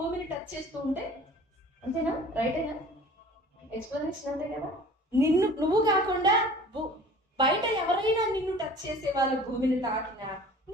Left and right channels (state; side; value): normal; both; correlation 0.45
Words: టచ్ చేస్తూ ఉంటే, అంతేనా? రైటేనా? ఎక్స్ప్లెనేషన్ అంతే కదా. నువ్వు కాకుండా బయట ఎవరైనా నిన్ను టచ్ చేసే వాళ్ళు భూమిని తాకినా